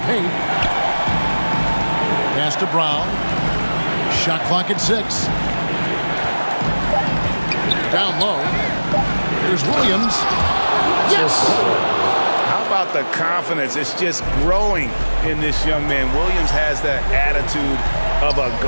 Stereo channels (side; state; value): both; inverted; correlation -1.00